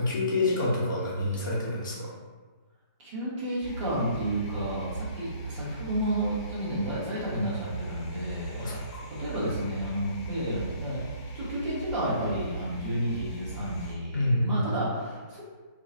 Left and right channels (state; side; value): inverted; both; correlation -0.59